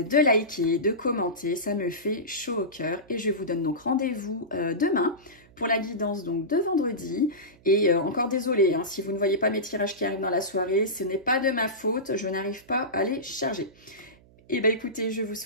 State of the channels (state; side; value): noise; right; hum, 27 dB below the sound